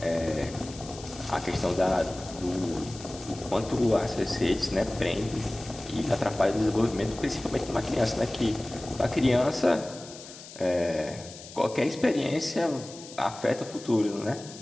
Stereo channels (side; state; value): left; noise; hiss, 16 dB below the sound